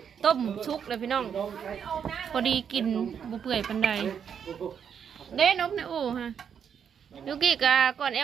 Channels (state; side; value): quieter; left; 7.7 dB